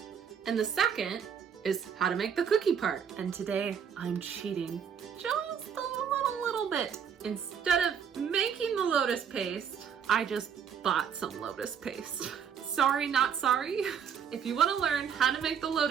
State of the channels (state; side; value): quieter; left; 7.5 dB